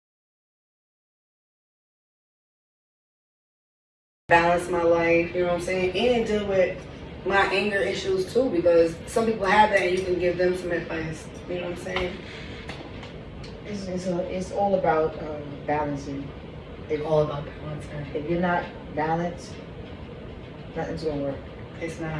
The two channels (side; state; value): both; identical; correlation 1.00